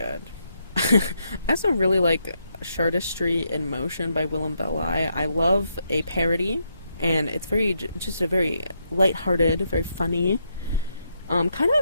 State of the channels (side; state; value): both; inverted; correlation -0.79